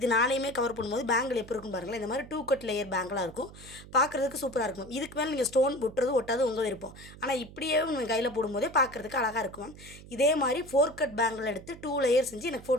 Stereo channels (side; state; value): right; noise; hum, 17 dB below the sound